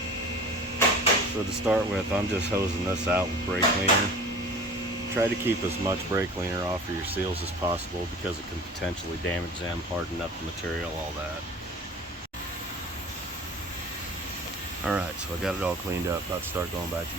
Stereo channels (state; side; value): normal; both; correlation 0.40